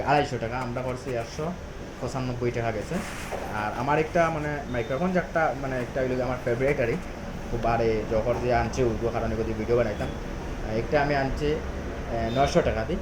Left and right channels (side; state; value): both; identical; correlation 1.00